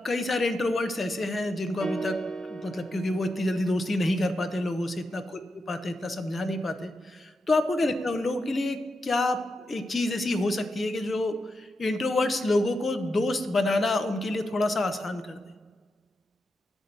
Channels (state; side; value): normal; both; correlation 0.87